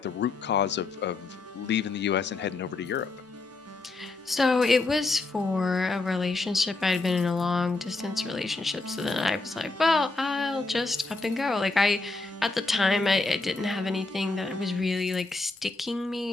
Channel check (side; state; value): right; quieter; 3.4 dB